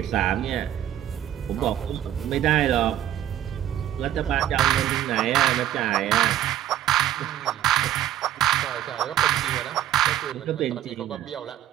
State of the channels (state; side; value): quieter; left; 11.9 dB